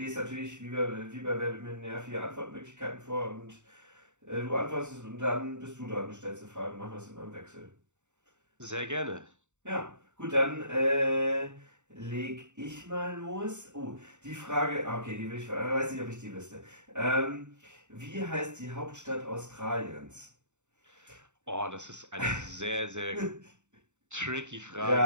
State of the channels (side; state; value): left; late; 0.84 ms